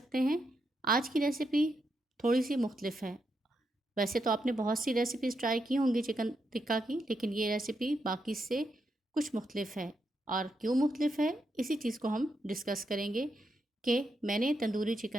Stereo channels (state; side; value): normal; both; correlation 0.83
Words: हैं। आज की रेसिपी थोड़ी सी मुख्तलिफ है। वैसे तो आपने बहुत सी रेसिपीज़ ट्राई की होंगी चिकन टिक्का की, लेकिन ये रेसिपी बाकी से कुछ मुख्तलिफ है। और क्यों मुख्तलिफ है, इसी चीज़ को हम डिस्कस करेंगे कि मैंने तंदूरी